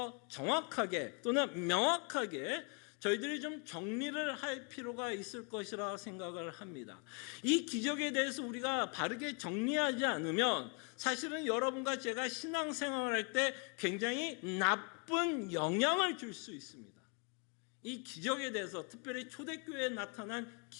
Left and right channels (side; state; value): right; quieter; 35.2 dB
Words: 정확하게 또는 명확하게 저희들이 좀 정리를 할 필요가 있을 것이라 생각을 합니다. 이 기적에 대해서 우리가 바르게 정리하지 않으면 사실은 여러분과 제가 신앙생활을 할 때 굉장히 나쁜 영향을 줄 수 있습니다. 이 기적에 대해서, 특별히 초대교회에 나타난